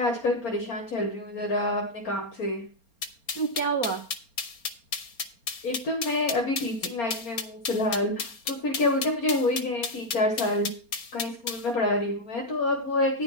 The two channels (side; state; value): right; late; 4.3 ms